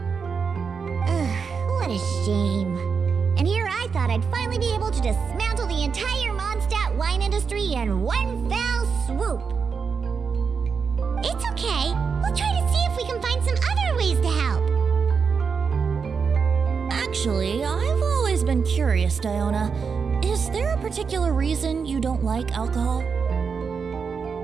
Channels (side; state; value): left; quieter; 5.8 dB